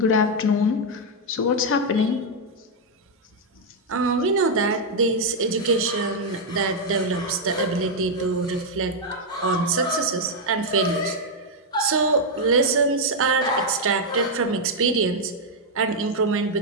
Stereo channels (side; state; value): both; normal; correlation -0.01